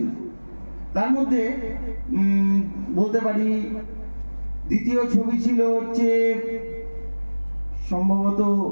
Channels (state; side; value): inverted; both; correlation -1.00